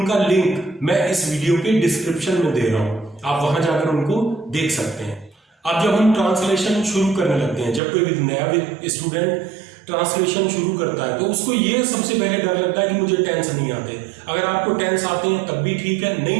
लिंक मैं इस वीडियो के डिस्क्रिप्शन में दे रहा हूं, आप वहां जाकर उनको देख सकते हैं। अब जब हम ट्रांसलेशन शुरू करने लगते हैं, जब कोई नया स्टूडेंट ट्रांसलेशन शुरू करता है तो उसको ये सबसे पहले डर लगता है कि मुझे टेंस नहीं आते। अगर आपको टेंस आते हैं तब भी ठीक है,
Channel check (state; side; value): drops out; left; at 7.8 s